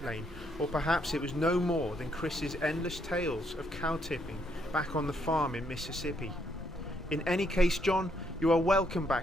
lane, or perhaps it was no more than Chris's endless tales of cow tipping back on the farm in Mississippi. In any case, John, you are welcome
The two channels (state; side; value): noise; right; hum, 20 dB below the sound